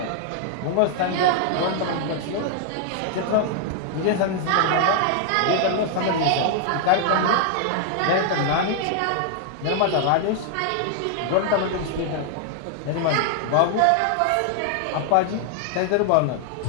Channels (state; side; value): different; both; correlation 0.00